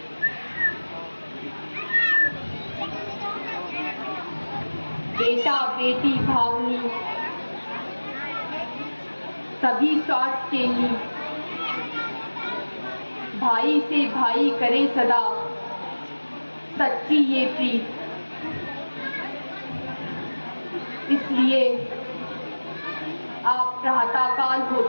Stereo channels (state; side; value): inverted; both; correlation -1.00